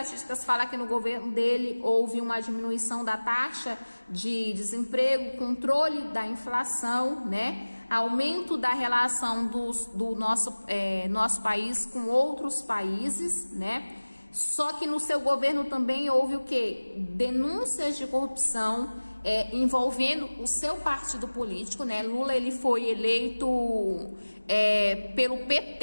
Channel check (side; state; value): both; inverted; correlation -1.00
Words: fala que no governo dele houve uma diminuição da taxa de desemprego, controle da inflação, né? Aumento da relação do nosso país com outros países, né? Só que no seu governo também houve o quê? Denúncias de corrupção envolvendo o seu partido político, né? Lula, ele foi eleito pelo